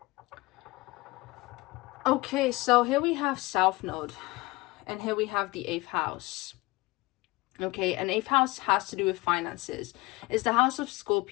Okay, so here we have South Node, and here we have the 8th house. Okay, and 8th house has to do with finances. It's the house of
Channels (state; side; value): quieter; right; 22.0 dB